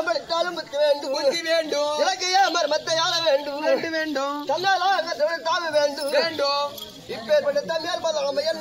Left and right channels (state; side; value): identical; both; correlation 1.00